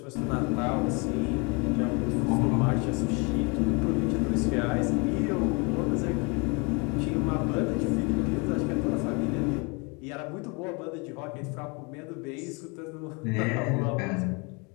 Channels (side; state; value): right; quieter; 30.9 dB